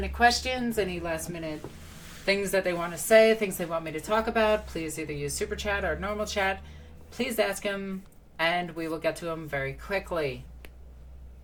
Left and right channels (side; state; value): both; identical; correlation 1.00